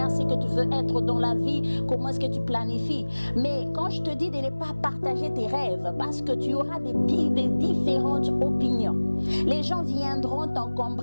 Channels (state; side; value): inverted; both; correlation -1.00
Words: ce que tu veux être dans la vie, comment est-ce que tu planifies. Mais quand je te dis de ne pas partager tes rêves, parce que tu auras des différentes opinions. Les gens viendront